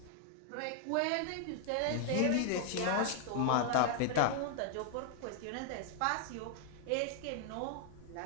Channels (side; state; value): both; different; correlation 0.00